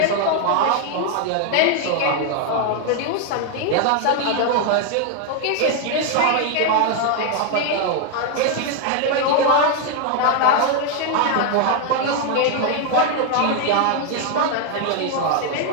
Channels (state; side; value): different; both; correlation 0.01